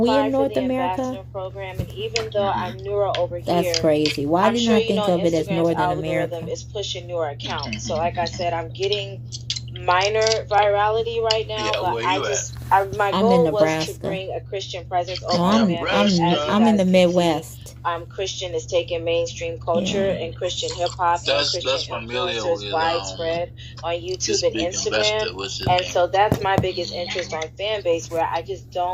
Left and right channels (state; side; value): identical; both; correlation 1.00